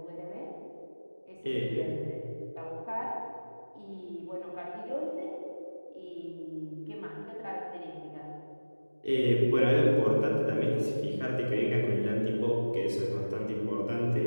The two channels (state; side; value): inverted; both; correlation -1.00